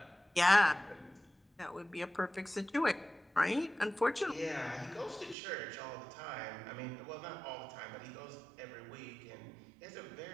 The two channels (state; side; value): drops out; left; at 5.4 s